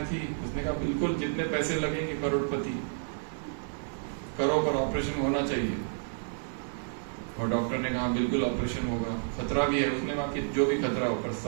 थी। उसने कहा बिल्कुल जितने पैसे लगेंगे, करोड़पति, करो पर ऑपरेशन होना चाहिए। और डॉक्टर ने कहा बिल्कुल ऑपरेशन होगा, खतरा भी है। उसने कहा कि जो भी खतरा हो पर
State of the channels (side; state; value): left; silent; 58 dB below the other